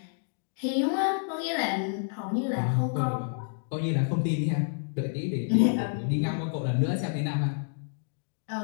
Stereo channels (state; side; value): silent; right; digital silence